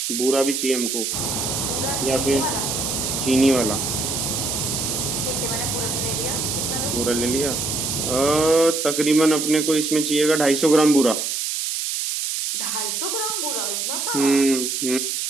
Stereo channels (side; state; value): right; noise; hiss, 1 dB below the sound